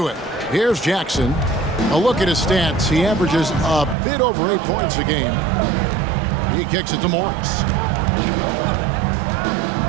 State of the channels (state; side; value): drops out; left; at 4.0 s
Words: it. Here's Jackson. A look at his stats. He averages a bit over 8 points a game. He kicks it to Morris.